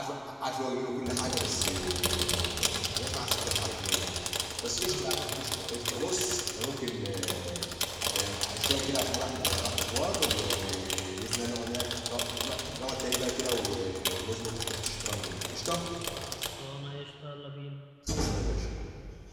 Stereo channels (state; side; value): identical; both; correlation 1.00